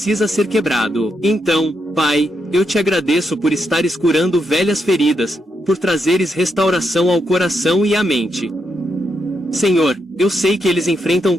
ser quebrado. Então, Pai, eu te agradeço por estares curando velhas feridas, por trazeres restauração ao coração e à mente. Senhor, eu sei que eles enfrentam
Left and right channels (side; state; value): both; normal; correlation 0.81